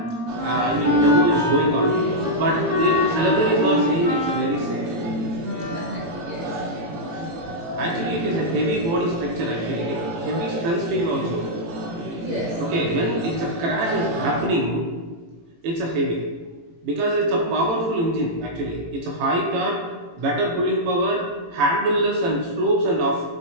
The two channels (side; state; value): left; late; 18 ms